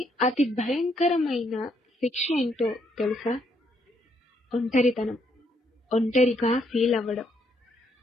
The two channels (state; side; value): normal; both; correlation 0.73